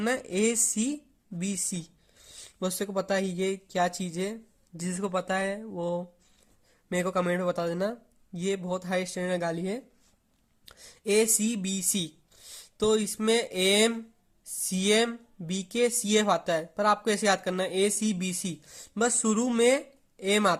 है, ACBC। बहुत से को पता है ये क्या चीज है, जिसको पता है वो मेरे को कमेंट में बता देना। ये बहुत हाई स्टैंडर्ड गाली है। ACBC, तो इसमें AM CM BK CF आता है, पर आपको ऐसे याद करना है ACBC, बस शुरू में M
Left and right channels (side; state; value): both; identical; correlation 1.00